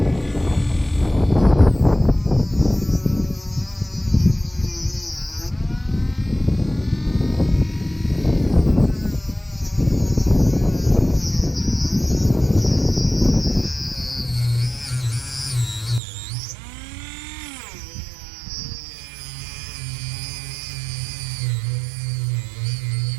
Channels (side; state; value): left; drops out; at 16.0 s